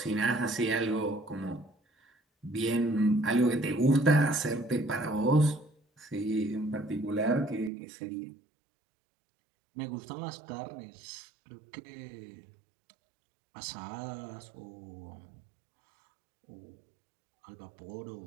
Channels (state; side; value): drops out; left; at 7.7 s